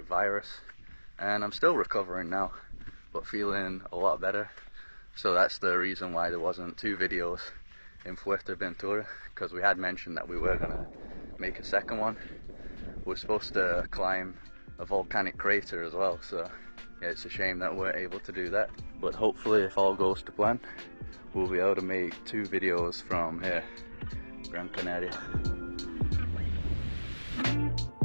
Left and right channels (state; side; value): inverted; both; correlation -1.00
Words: virus, and I'm still recovering now, but feeling a lot better. So that's the reason why there wasn't two videos in Fuerteventura, because we had mentioned that we were gonna make a second one. We're supposed to climb a volcanic crater as well, so yeah, it's a shame that we weren't able to do that. But hopefully, if all goes to plan, we'll be able to make two videos from here, Gran Canaria.